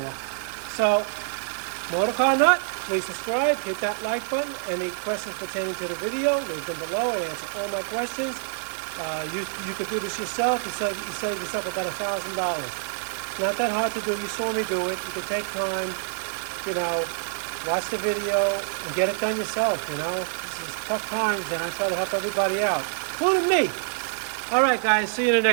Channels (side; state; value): left; silent; 61 dB below the other